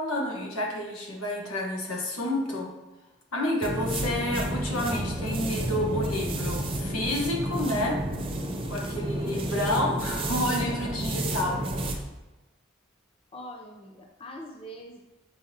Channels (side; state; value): both; normal; correlation 0.44